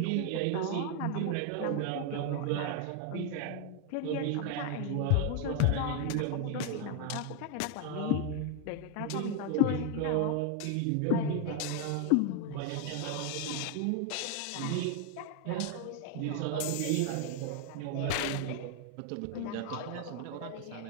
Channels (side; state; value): both; different; correlation 0.01